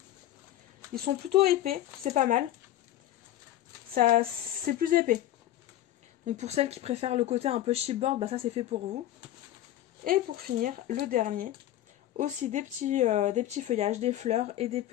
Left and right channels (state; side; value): quieter; right; 13.2 dB